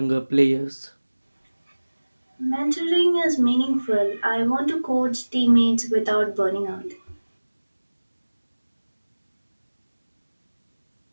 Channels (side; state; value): both; inverted; correlation -1.00